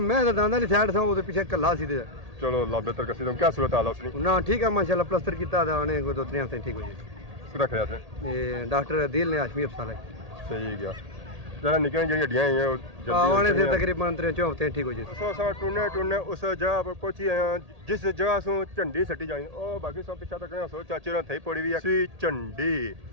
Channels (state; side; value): late; left; 1.8 ms